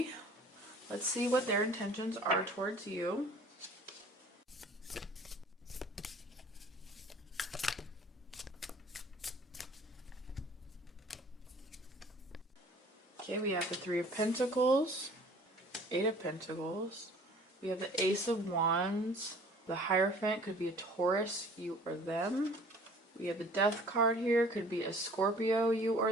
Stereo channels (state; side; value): normal; both; correlation 0.51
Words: let's see what their intentions are towards you. Okay, we have the 3 of Pentacles, 8 of Pentacles. We have the Ace of Wands. The Hierophant could be a Taurus, you or them. We have the Death card here, could be a Scorpio, you or